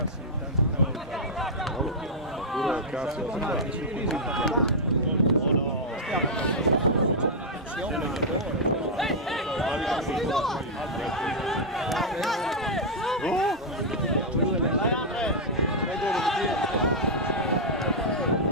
tanti gol forse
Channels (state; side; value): normal; both; correlation -0.06